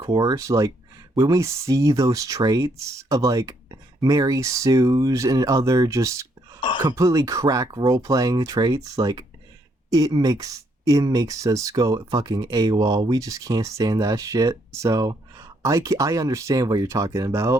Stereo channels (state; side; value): normal; both; correlation 0.72